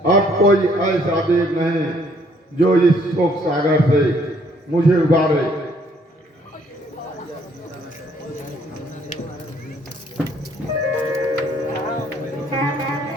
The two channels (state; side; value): normal; both; correlation 0.65